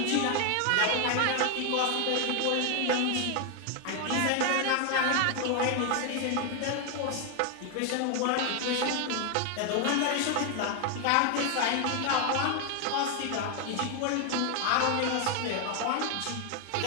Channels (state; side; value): different; both; correlation 0.01